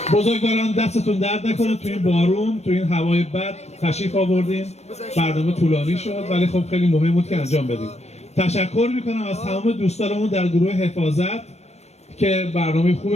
بزرگواران دستتون درد نکنه، تو این بارون، تو این هوای بد تشریف آوردین. برنامه طولانی شد ولی خب خیلی مهم بود که انجام بدیم. تشکر میکنم از تمام دوستانمون در گروه حفاظت که برنامه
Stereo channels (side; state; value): right; late; 0.31 ms